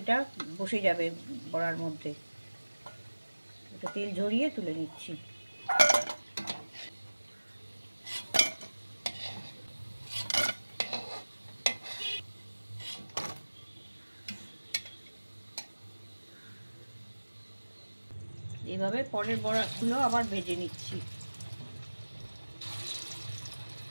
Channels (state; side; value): inverted; both; correlation -1.00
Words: বসে যাবে বড়ার মধ্যে। এটা তেল ঝরিয়ে তুলে নিচ্ছি। এইভাবে পরের বড়াগুলো আবার ভেজে নিচ্ছি।